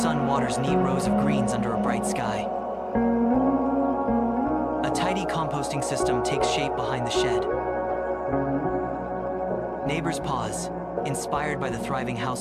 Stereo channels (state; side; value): identical; both; correlation 1.00